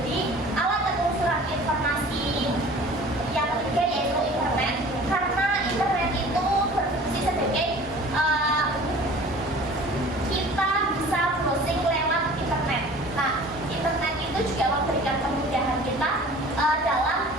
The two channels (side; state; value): both; normal; correlation 0.45